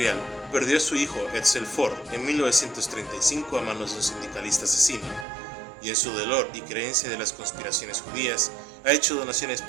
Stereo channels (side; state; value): left; drops out; at 5.2 s